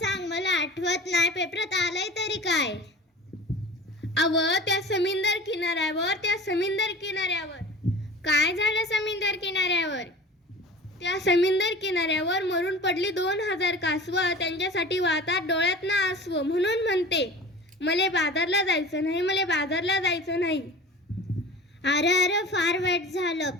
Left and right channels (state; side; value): normal; both; correlation 0.39